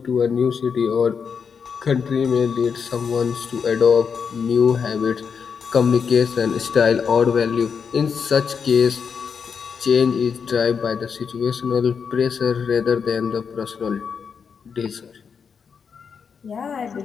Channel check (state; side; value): quieter; right; 6.3 dB